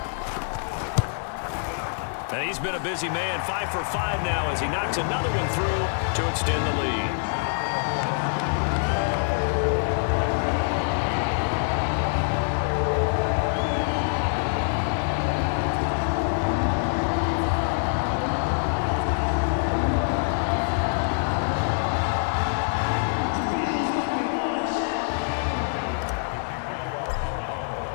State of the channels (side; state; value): right; silent; digital silence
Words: And he's been a busy man, 5 for 5 now as he knocks another one through to extend the lead.